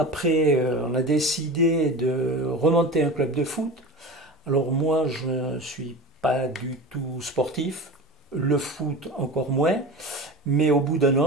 on a décidé de remonter un club de foot. Alors moi, je ne suis pas du tout sportif, le foot encore moins, mais au bout d'1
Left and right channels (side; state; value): both; normal; correlation 0.31